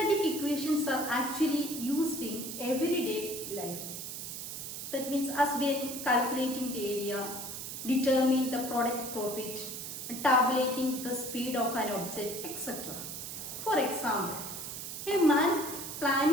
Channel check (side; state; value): right; noise; hiss, 7 dB below the sound